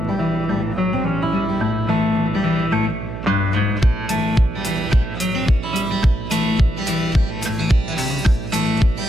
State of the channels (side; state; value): right; noise; hum, 8 dB below the sound